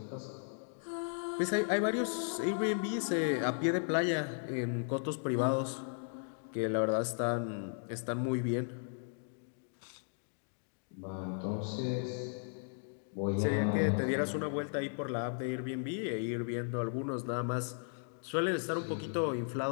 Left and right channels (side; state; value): right; silent; digital silence